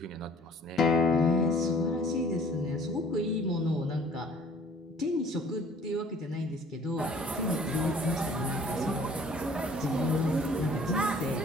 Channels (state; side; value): normal; both; correlation 0.54